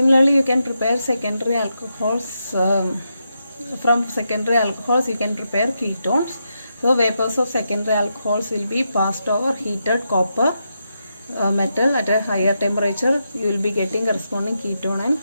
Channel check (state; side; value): inverted; both; correlation -0.84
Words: you can prepare secondary alcohols. From secondary alcohols, you can prepare ketones. So vapors of secondary alcohols will be passed over heated copper metal at a higher temperature. You will be getting corresponding ketone and